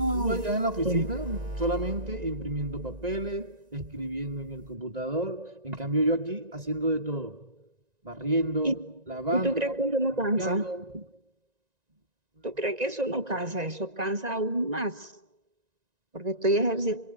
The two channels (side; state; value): left; late; 1.9 ms